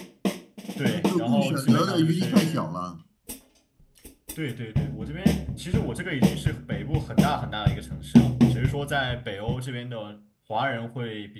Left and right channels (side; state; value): both; identical; correlation 1.00